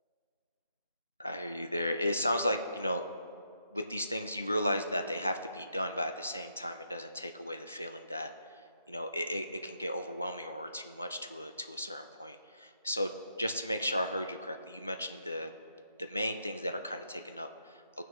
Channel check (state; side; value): inverted; both; correlation -0.77